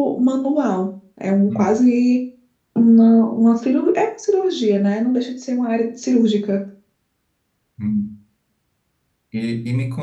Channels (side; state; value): both; identical; correlation 1.00